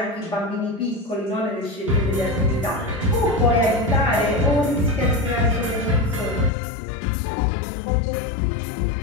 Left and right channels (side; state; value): right; drops out; at 6.5 s